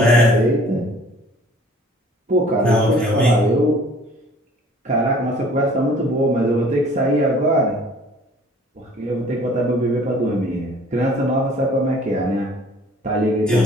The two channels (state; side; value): normal; both; correlation 0.52